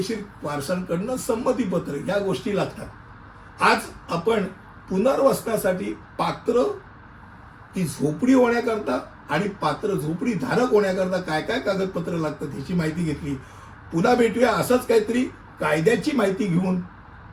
वारसांकडनं संमतीपत्र या गोष्टी लागतात. आज आपण पुनर्वसनासाठी पात्र ती झोपडी होण्याकरता आणि पात्र झोपडी धारक होण्याकरता काय काय कागदपत्र लागतात याची माहिती घेतली. पुन्हा भेटूया असंच काहीतरी कायद्याची माहिती घेऊन.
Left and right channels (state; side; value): identical; both; correlation 1.00